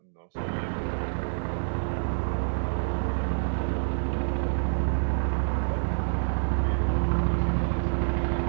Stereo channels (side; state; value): left; silent; digital silence